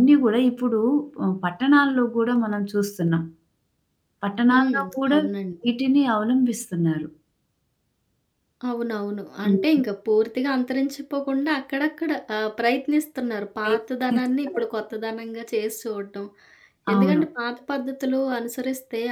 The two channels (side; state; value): both; identical; correlation 1.00